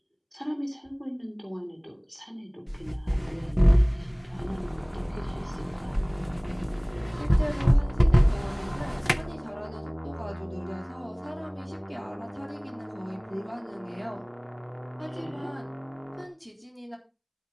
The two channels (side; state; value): both; identical; correlation 1.00